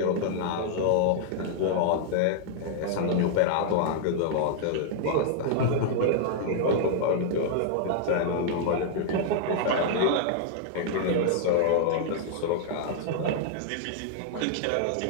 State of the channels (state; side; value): different; both; correlation -0.01